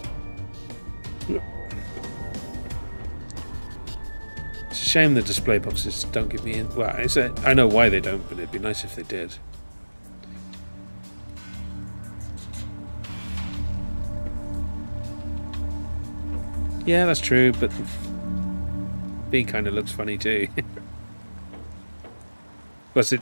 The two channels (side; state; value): both; inverted; correlation -1.00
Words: It's a shame the display boxes don't give me... Well, I know why they don't, but it'd be nice if they did. Yeah, that's true, but B kind of looks funny too. Plus,